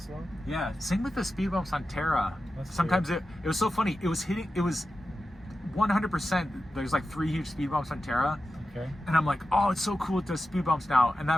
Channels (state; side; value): normal; both; correlation 0.92